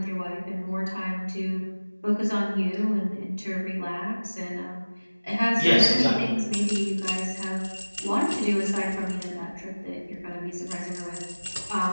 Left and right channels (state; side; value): inverted; both; correlation -1.00